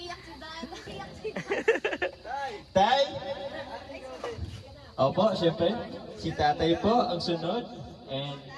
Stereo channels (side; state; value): both; identical; correlation 1.00